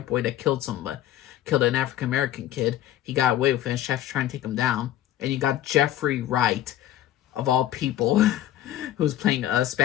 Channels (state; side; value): quieter; right; 12.7 dB